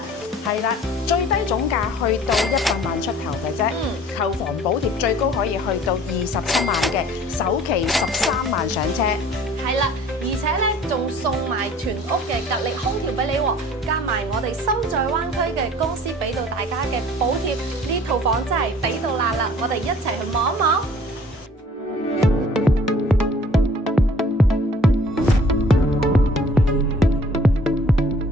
係啦，最低總價去到100萬出頭嘅啫，購房補貼最高可以去到27萬嘅，首期13萬上車。係啦，而且咧仲送埋全屋嘅格力空調俾你喎，加埋我哋心在灣區嘅公司俾到大家嘅補貼，呢套房真係抵到爛啦！我哋一齊去望一望。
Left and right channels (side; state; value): both; normal; correlation 0.50